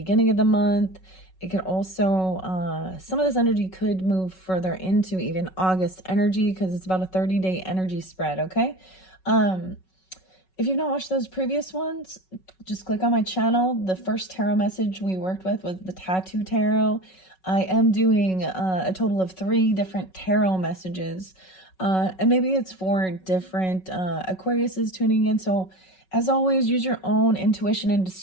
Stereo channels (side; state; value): right; late; 5.4 ms